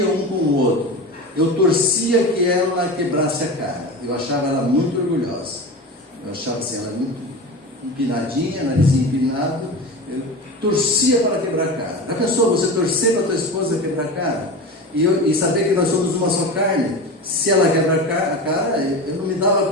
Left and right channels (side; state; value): both; normal; correlation 0.27